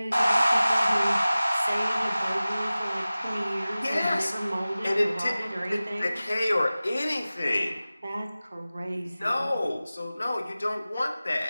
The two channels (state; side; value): inverted; both; correlation -0.97